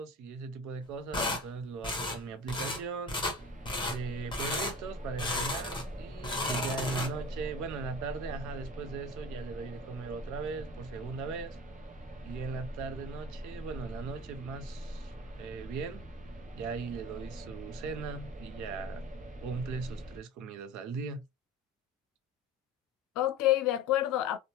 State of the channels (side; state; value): both; normal; correlation 0.36